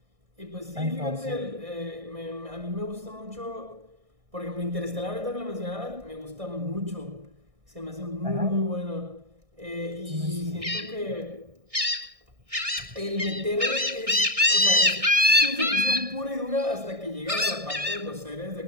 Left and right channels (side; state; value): left; late; 1.6 ms